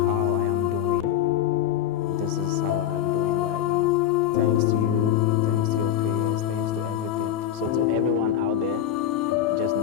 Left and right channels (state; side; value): quieter; right; 10.5 dB